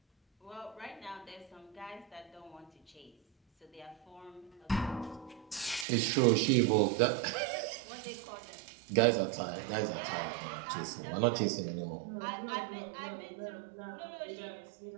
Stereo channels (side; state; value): left; drops out; at 5.9 s